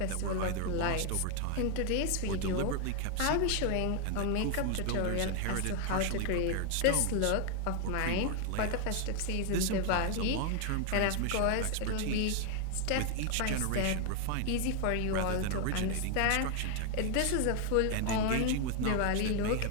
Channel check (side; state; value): both; different; correlation 0.00